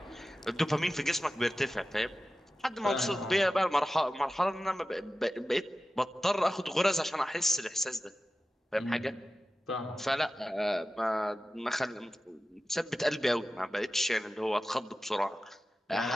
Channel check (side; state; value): both; normal; correlation 0.94